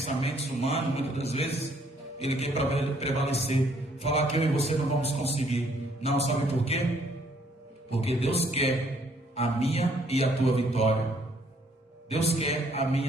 humanos, muitas das vezes, ele quer prevalecer. Falar que eu e você não vamos conseguir. Não, sabe por quê? Porque Deus quer a minha e a tua vitória. Deus quer a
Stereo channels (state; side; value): normal; both; correlation 0.65